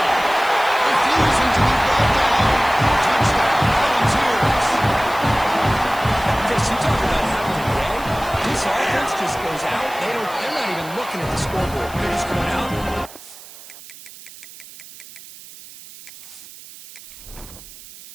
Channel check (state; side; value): noise; right; hiss, 18 dB below the sound